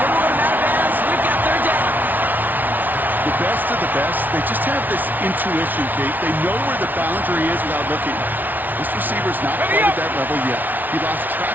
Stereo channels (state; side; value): late; left; 0.083 ms